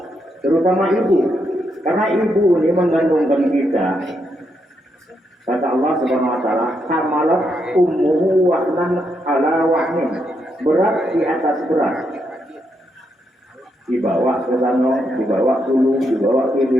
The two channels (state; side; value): normal; both; correlation 0.80